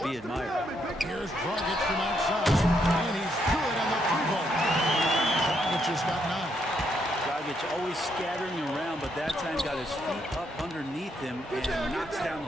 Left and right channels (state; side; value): normal; both; correlation 0.76